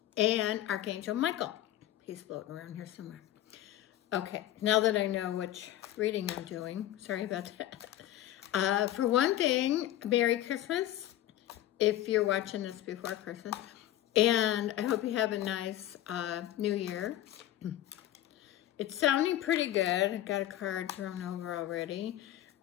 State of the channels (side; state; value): right; quieter; 13.3 dB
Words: and Archangel Michael. He's floating around here somewhere. Okay, now that I know which reading I'm doing, sorry about that. For one thing, Merry Christmas if you're watching this before Christmas. And I hope you have a nice New Year. It's sounding pretty good. I got a card thrown over already.